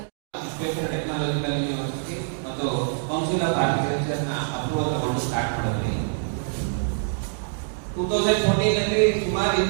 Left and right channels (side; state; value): left; silent; digital silence